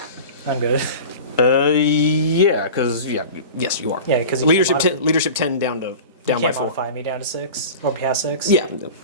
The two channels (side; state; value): both; inverted; correlation -0.35